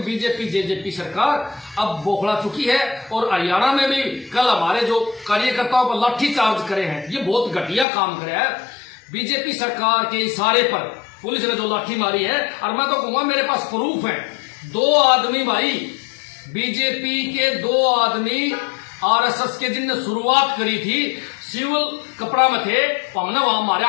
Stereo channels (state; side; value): drops out; right; at 7.9 s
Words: बीजेपी जेजेपी सरकार अब बौखला चुकी है। और हरियाणा में भी कल हमारे जो कार्यकर्ताओं पर लाठी चार्ज करे हैं, ये बहुत घटिया काम करे है। बीजेपी सरकार के इशारे पर पुलिस ने जो लाठी मारी है, और मैं तो कहूंगा मेरे पास प्रूफ है, 2 आदमी भाई, बीजेपी के 2 आदमी आरएसएस के जिनने शुरुआत करी थी, सिविल कपड़ा में थे, हमने वहां हमारे